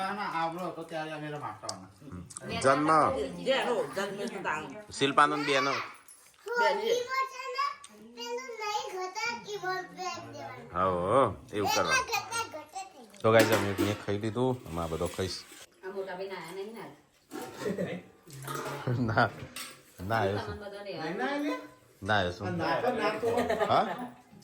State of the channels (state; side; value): identical; both; correlation 1.00